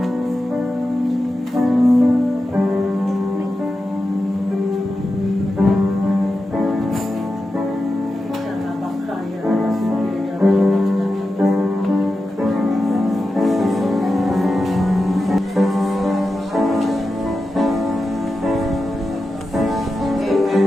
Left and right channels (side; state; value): both; normal; correlation 0.91